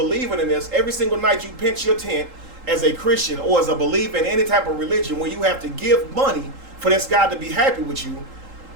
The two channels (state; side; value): late; left; 3.8 ms